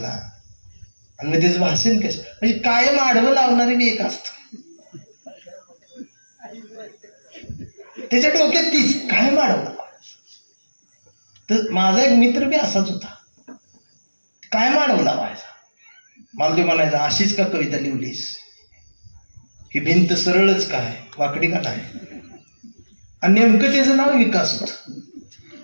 आणि मग त्याचं भाषण कशाला. म्हणजे कायम आडवं लावणारे बी एक असतं, त्याच्या डोक्यात तीच कायम आडवं. तर माझा एक मित्र बी असाच होता, कायम आडवं लावायचा. मला ते म्हणायचा अशीच का कविता लिहिलीस, ही भिंत सरळच काय वाकडी का नाही. आणि नेमकं त्याचं नाव विकास होत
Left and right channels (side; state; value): both; inverted; correlation -1.00